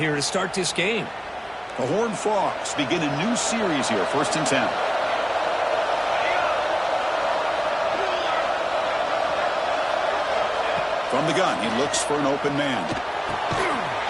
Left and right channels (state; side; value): identical; both; correlation 1.00